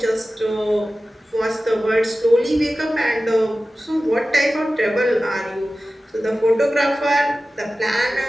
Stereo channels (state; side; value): normal; both; correlation 0.95